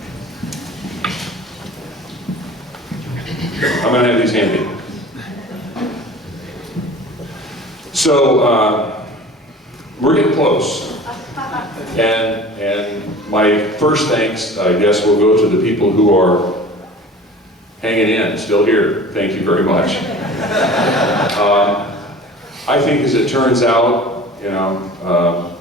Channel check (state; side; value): normal; both; correlation 0.42